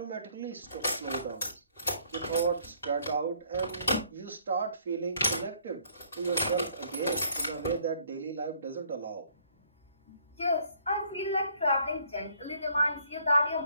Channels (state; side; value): inverted; both; correlation -0.63